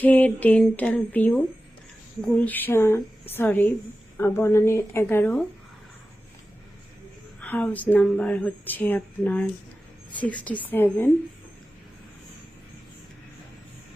ডেন্টাল ভিউ, গুলশান, সরি, বনানীর 11, হাউস নাম্বার হচ্ছে আপনার 67।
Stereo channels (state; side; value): normal; both; correlation 0.94